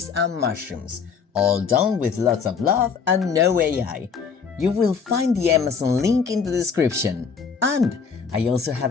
and mushrooms, all done with lots of love and no AI. You will find the Amazon link in the description. And I also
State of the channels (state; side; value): quieter; right; 5.9 dB